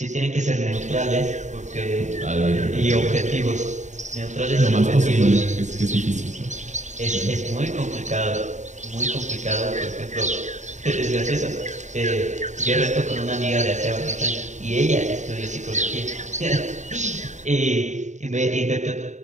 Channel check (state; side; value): late; left; 0.34 ms